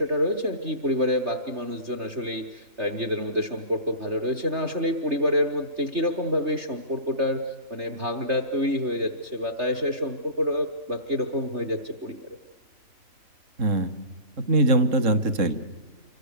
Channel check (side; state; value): left; late; 3.3 ms